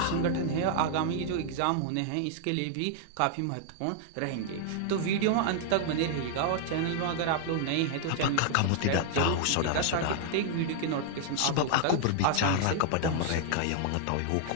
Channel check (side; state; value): both; different; correlation 0.00